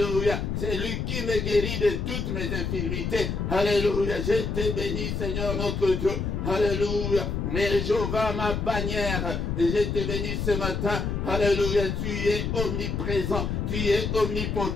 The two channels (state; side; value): noise; left; rumble, 2 dB below the sound